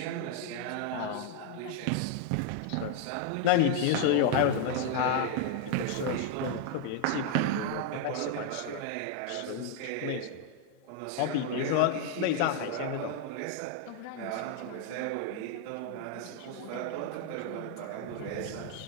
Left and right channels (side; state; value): both; different; correlation 0.00